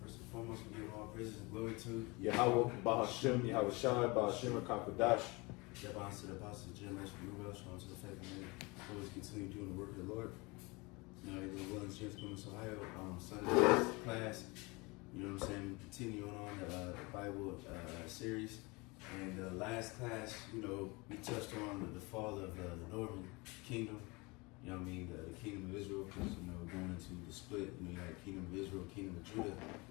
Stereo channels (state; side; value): quieter; right; 25.9 dB